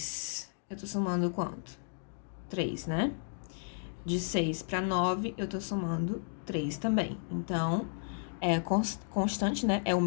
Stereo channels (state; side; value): silent; right; digital silence